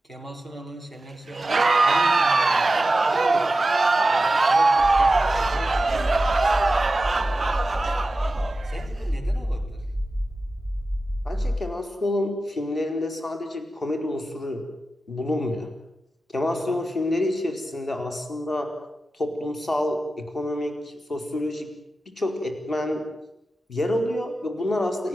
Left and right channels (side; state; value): both; normal; correlation 0.93